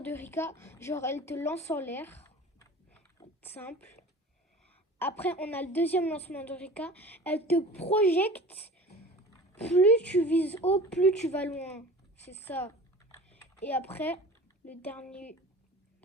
Rika, genre elle te lance en l'air. Simple. Après, on a le deuxième lancement de Rika. Elle te projette. Plus tu vises haut, plus tu vas loin. C'est ça. Et après, le dernier,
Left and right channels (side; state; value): both; normal; correlation 0.40